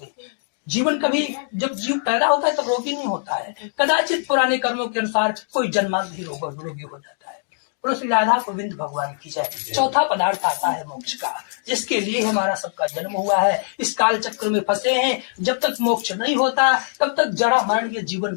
हैं। जीवन कभी जब जीव पैदा होता है तब रोगी नहीं होता है, कदाचित पुराने कर्मों के अनुसार कोई जन्मांत ही रोगी हो जाता है। और श्री राधा गोविंद भगवान की जय। चौथा पदार्थ आता है मोक्ष का, जिसके लिए हमारा सबका जन्म हुआ है। इस काल चक्र में फंसे हैं, जब तक मोक्ष नहीं होता तब तक जड़ा मरण के जीवन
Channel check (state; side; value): silent; right; 64 dB below the other